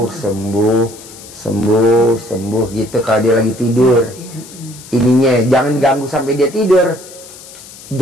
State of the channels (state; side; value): noise; left; hiss, 18 dB below the sound